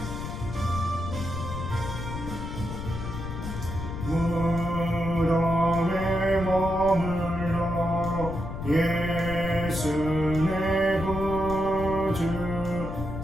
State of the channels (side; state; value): left; noise; rumble, 7 dB below the sound